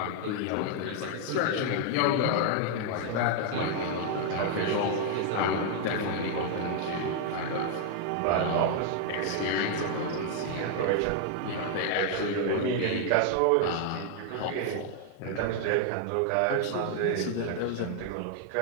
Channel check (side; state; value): both; different; correlation 0.00